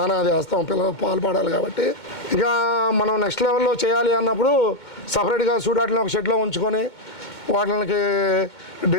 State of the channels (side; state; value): right; late; 2.2 ms